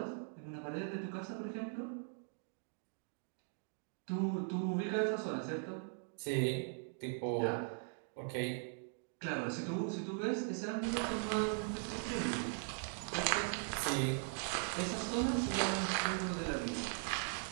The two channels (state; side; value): silent; left; 51 dB below the other